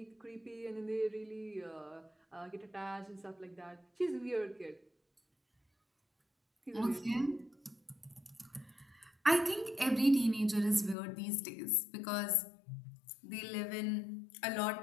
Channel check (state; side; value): drops out; right; at 11.0 s